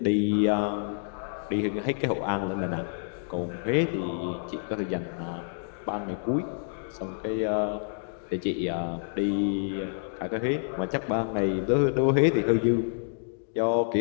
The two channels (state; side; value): silent; right; digital silence